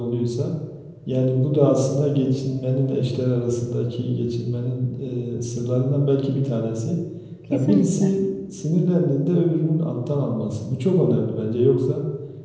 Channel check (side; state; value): both; identical; correlation 1.00